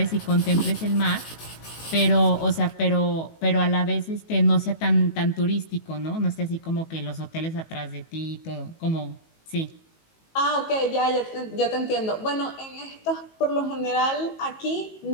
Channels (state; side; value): late; right; 18 ms